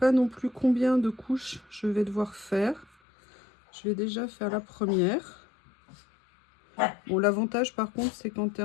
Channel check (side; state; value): right; drops out; at 2.9 s